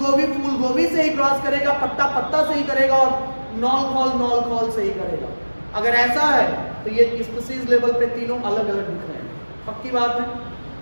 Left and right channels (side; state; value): both; inverted; correlation -1.00